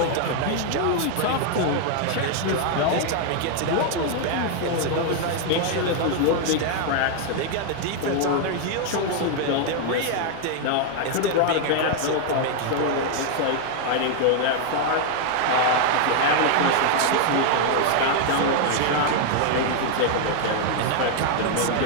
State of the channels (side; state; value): both; different; correlation 0.00